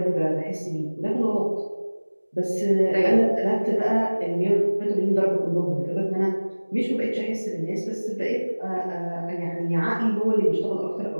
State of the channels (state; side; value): inverted; both; correlation -1.00